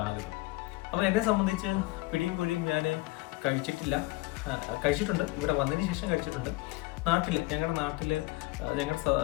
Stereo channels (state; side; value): quieter; right; 21.4 dB